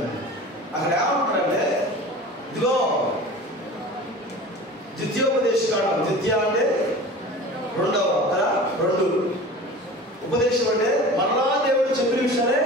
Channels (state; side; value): normal; both; correlation 0.38